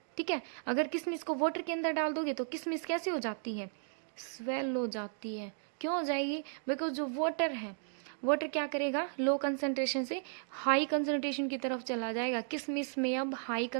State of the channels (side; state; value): left; silent; digital silence